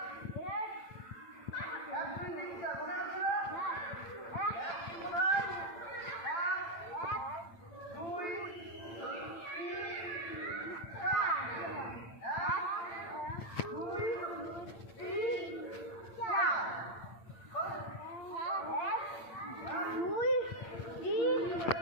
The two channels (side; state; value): right; late; 8.8 ms